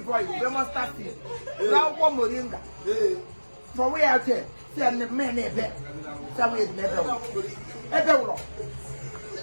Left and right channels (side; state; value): both; inverted; correlation -1.00